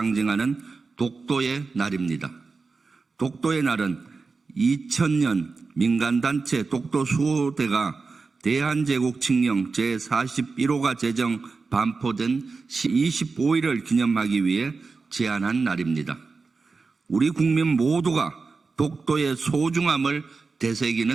독도의 날입니다. 독도의 날은 2000년 민간단체 독도수호대가 대한제국 칙령 제41호가 제정 반포된 25일을 기념하기 위해 제안한 날입니다. 우리 국민 모두가 독도의 소중함을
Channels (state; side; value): quieter; left; 4.3 dB